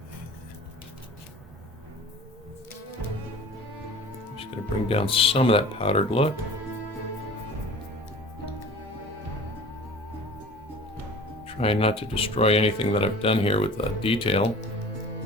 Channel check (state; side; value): normal; both; correlation 0.42